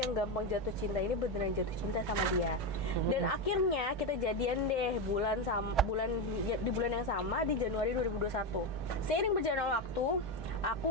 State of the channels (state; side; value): normal; both; correlation 0.12